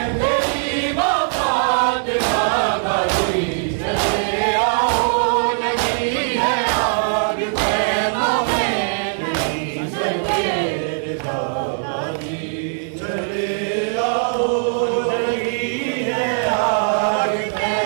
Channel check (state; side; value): silent; left; 66 dB below the other